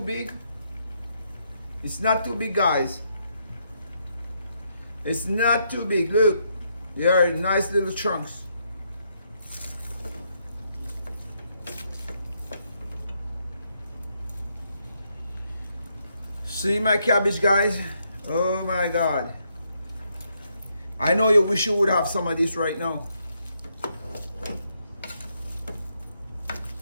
big. It's not too big, guys. It's not too big. Look, they are nice little chunks. See my cabbage, guys? Oh my God. I know you wish you would have some of this right now.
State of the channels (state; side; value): inverted; both; correlation -0.77